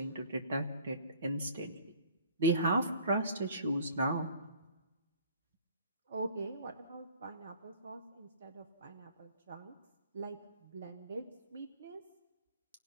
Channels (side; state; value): both; inverted; correlation -0.50